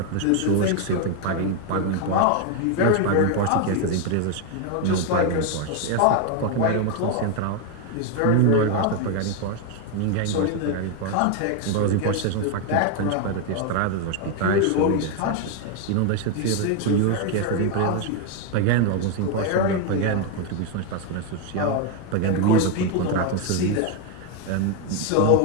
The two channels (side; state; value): both; different; correlation 0.01